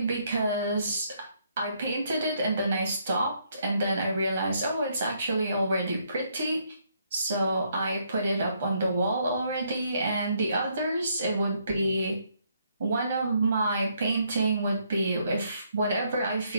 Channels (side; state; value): both; inverted; correlation -0.72